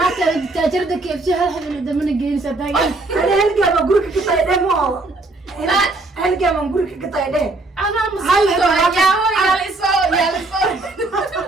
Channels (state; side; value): quieter; left; 3.1 dB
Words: تاجرتك كيف شيء هالحين اللي دمنا جايين صدقني أنا هلقى ما أقولك كطايدة مو هلقى ما أقولك كطايدة أنا مصيبة يا لسو